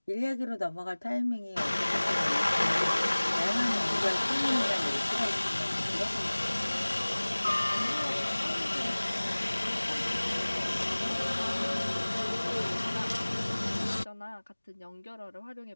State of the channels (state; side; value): inverted; both; correlation -1.00